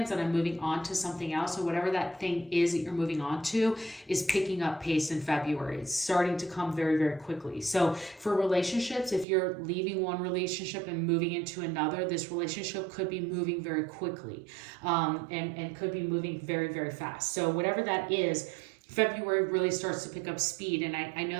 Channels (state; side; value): drops out; left; at 9.2 s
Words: and I'm moving on to something else. So whatever that thing is that you're moving on to is picking up pace in February. It's starting to come very, very quickly. So for relationships, if you're leaving one relationship and moving into another, this relationship could be moving very quickly, and could be moving very, very fast. So whatever that is, February really starts to pick up speed. And I